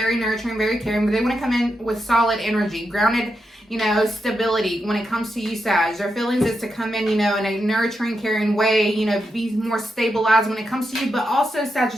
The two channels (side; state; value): both; normal; correlation 0.85